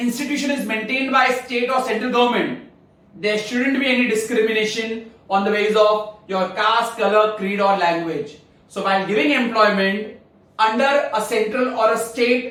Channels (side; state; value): both; identical; correlation 1.00